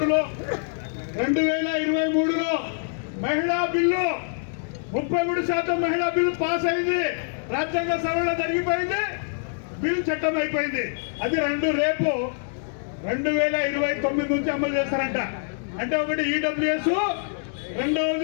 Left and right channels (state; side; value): silent; right; digital silence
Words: మహిళా బిల్లు 33% మహిళా బిల్లు పాస్ అయింది. రాజ్యాంగ సవరణ జరిగిపోయింది, బిల్లు చట్టం అయిపోయింది. అది రేపు 2029 నుంచి అమలు చేస్తారంట. అంటే ఒకటి ఈడబ్ల్యూఎస్,